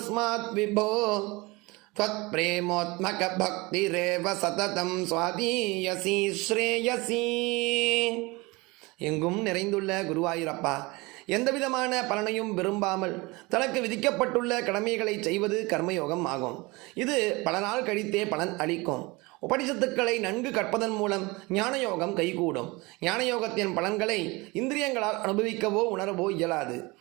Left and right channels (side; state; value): left; quieter; 24.1 dB